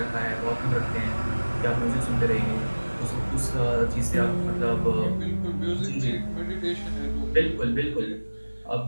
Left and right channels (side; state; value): both; inverted; correlation -1.00